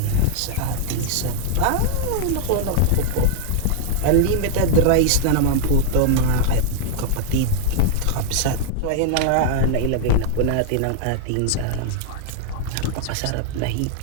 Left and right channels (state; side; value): different; both; correlation 0.00